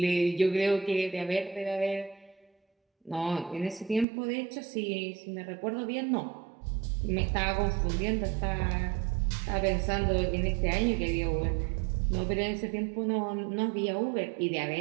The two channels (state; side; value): drops out; left; at 4.0 s